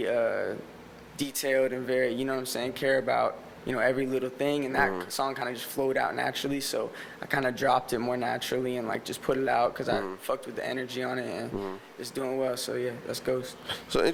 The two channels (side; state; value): both; identical; correlation 1.00